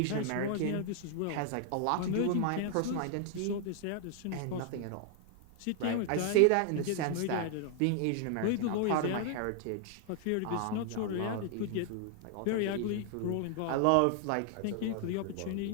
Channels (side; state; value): both; different; correlation 0.00